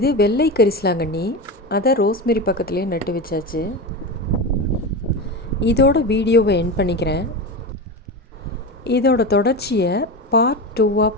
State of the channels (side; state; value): both; normal; correlation 0.22